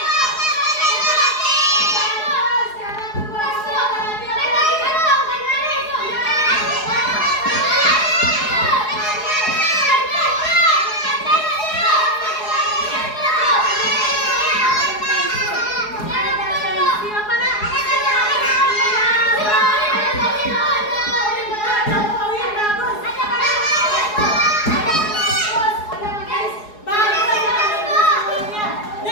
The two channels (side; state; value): right; late; 4.8 ms